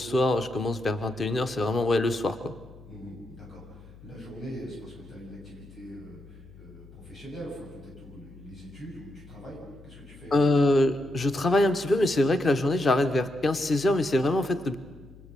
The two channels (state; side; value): noise; left; hum, 21 dB below the sound